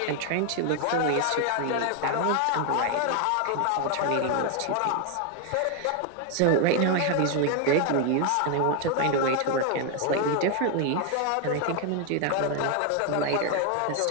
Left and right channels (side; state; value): both; different; correlation 0.00